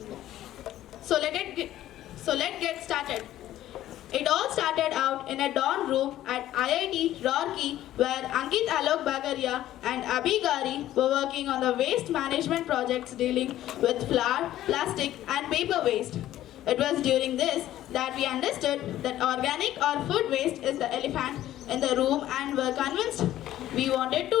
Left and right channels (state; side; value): quieter; right; 13.4 dB